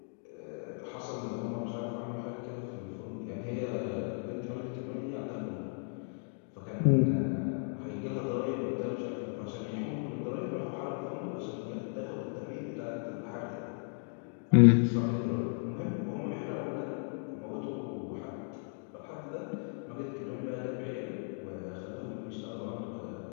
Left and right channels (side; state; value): right; silent; 54 dB below the other